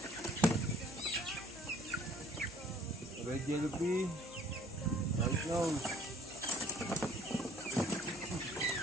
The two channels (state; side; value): noise; left; hum, 21 dB below the sound